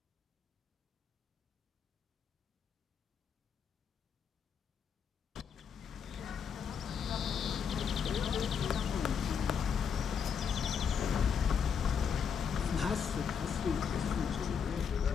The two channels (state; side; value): quieter; right; 6.9 dB